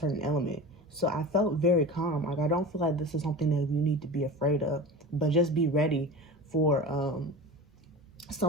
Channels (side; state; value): both; normal; correlation 0.32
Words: element. So I felt very calm. Like, I don't feel like this is something that you need to be afraid of, but just be ready for